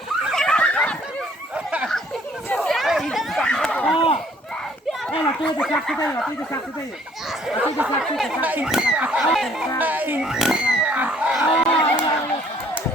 Đây là tôi được sạc cái đây là tôi được sạc cái đây. Tôi được sạc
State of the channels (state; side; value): normal; both; correlation 0.60